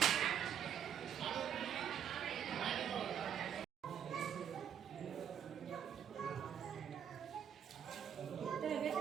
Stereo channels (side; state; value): left; quieter; 8.9 dB